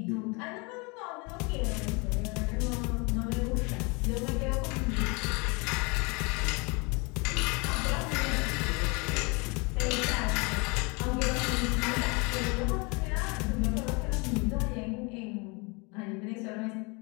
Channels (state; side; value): quieter; right; 29.6 dB